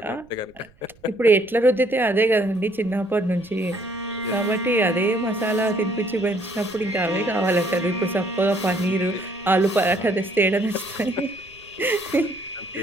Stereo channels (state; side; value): noise; right; rumble, 29 dB below the sound